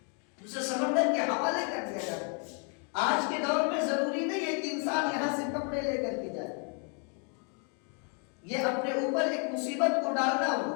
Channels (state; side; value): quieter; right; 39.4 dB